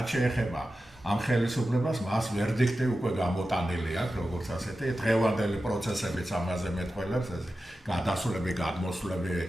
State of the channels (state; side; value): normal; both; correlation 0.93